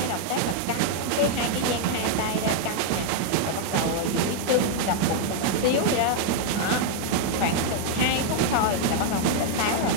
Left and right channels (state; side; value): different; both; correlation 0.00